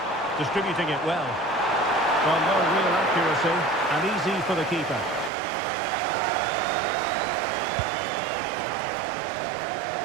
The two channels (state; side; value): drops out; left; at 5.3 s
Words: Distributing it well. Well, no real accuracy, and easy for the keeper.